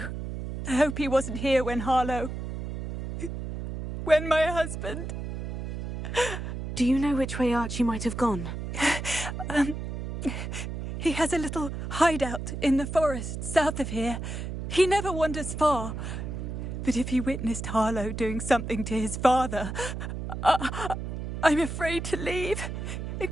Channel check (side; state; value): right; noise; hum, 6 dB below the sound